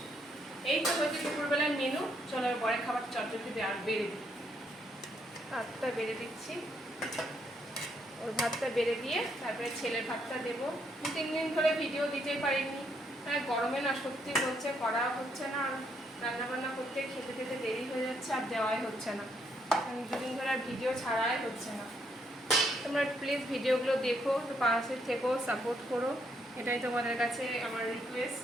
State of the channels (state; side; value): normal; both; correlation 0.74